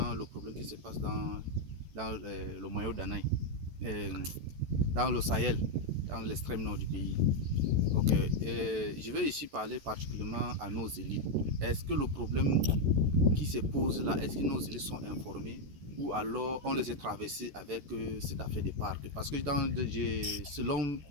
le problème qui se passe dans le Mayo d'Anaï, dans le Sahel, dans l'extrême nord du pays. Ok, je vais ici parler particulièrement à nos élites. Est-ce que le problème qui se pose là, est-ce que nos élites sont informés ou alors on les a traversés avec cette affaire de parc? Parce que selon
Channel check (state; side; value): late; left; 14 ms